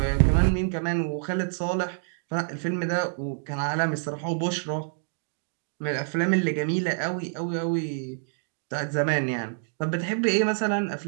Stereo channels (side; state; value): left; silent; digital silence